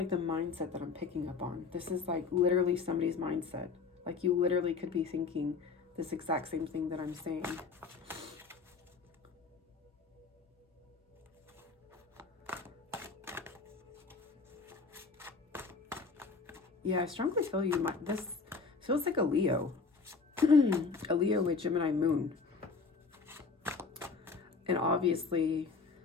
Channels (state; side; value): quieter; right; 4.7 dB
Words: the mindset that I'm picking up on. This is like literally somebody's mindset. Like you literally could be thinking, this exact same thing that I'm saying. Yeah, I strongly feel you might, this feels like a Leo. A Leo with Gemini moon. And obviously,